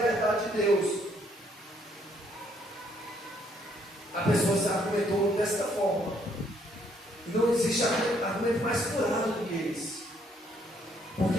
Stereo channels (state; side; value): normal; both; correlation 0.68